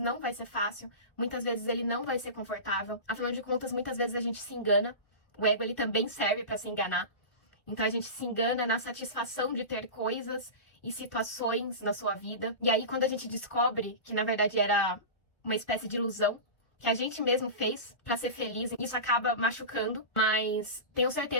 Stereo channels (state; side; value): late; right; 1.7 ms